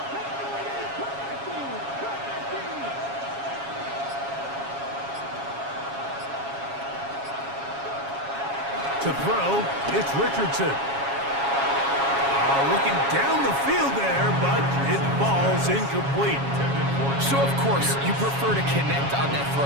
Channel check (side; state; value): left; late; 7.3 ms